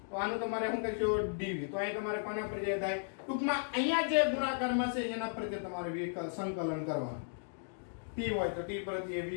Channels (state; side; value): silent; right; digital silence